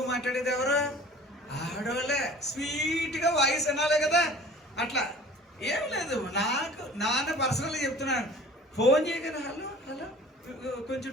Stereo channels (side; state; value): both; normal; correlation 0.46